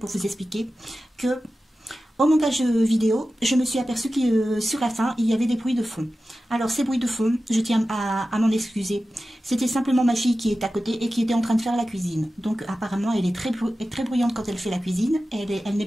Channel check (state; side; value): normal; both; correlation 0.94